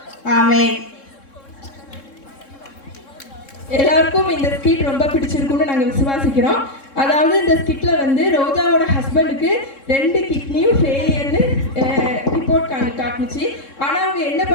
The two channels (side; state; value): right; late; 3.7 ms